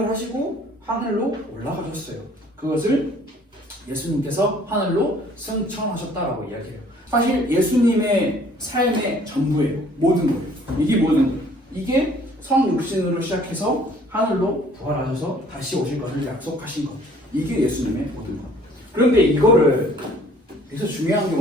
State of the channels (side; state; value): both; normal; correlation 0.56